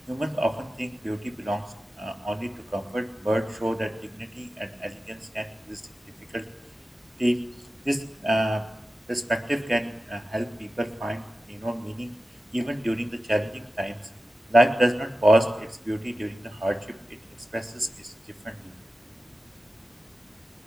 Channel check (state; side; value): normal; both; correlation 0.94